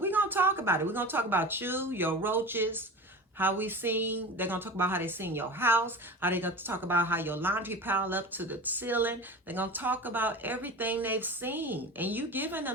we're gonna talk about it. We're gonna talk about you, your roaches, how we seen. They're gonna talk about how they seen your house, how they gonna talk about how your laundry piled up to the ceiling. They're gonna talk about everything they've seen, and you giving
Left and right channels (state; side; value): normal; both; correlation 0.32